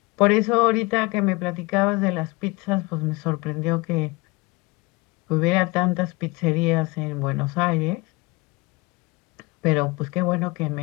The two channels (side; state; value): right; quieter; 24.2 dB